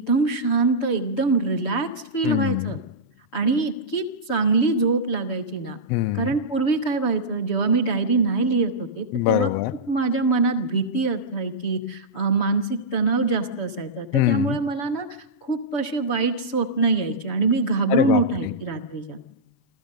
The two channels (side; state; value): right; late; 6.9 ms